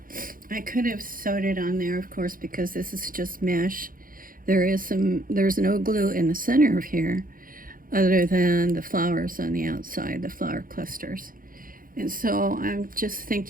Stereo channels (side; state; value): left; late; 0.41 ms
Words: I could have sewed it on there, of course, because this is just mesh. There's no glue in the center of here other than the flowers on the outside, the flower clusters. And so I'm just